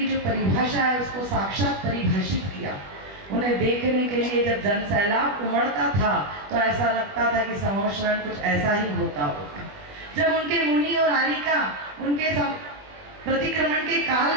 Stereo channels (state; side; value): late; left; 20 ms